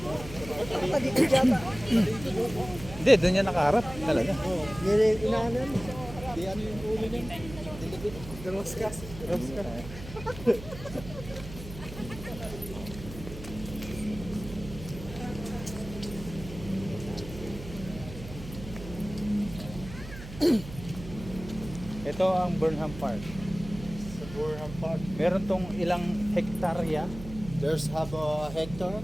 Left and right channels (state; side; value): noise; right; hum, 13 dB below the sound